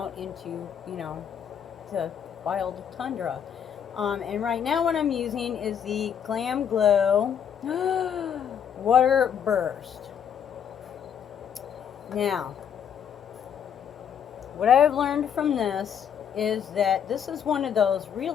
into, you know, the wild tundra. And right now what I'm using is the Glam Glow Water Burst. Now, what I've learned from this is that this is one of those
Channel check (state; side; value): quieter; right; 8.2 dB